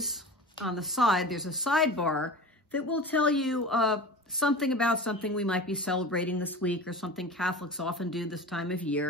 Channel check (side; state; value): both; normal; correlation 0.34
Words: on the side, there's a sidebar that will tell you something about something we might be celebrating this week or something Catholics often do this time of